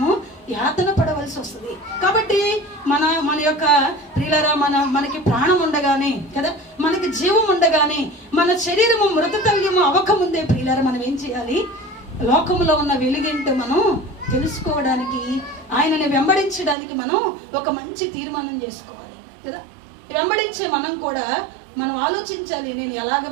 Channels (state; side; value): drops out; left; at 16.8 s